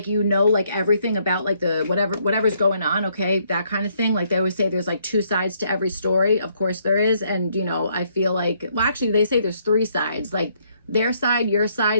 you know, like everything about like the whatever's going on. Okay, that kind of thing. Like they always say there's like two sides to every story. Of course there is. And, you know, I feel like, well, actually they say there's three sides. Like their side, your side,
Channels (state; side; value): inverted; both; correlation -0.70